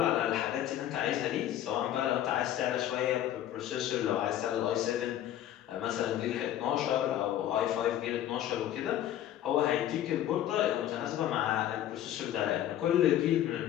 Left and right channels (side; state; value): right; quieter; 11.9 dB